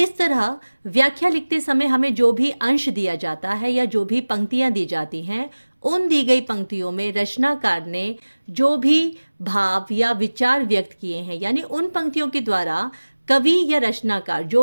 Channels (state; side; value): inverted; both; correlation -1.00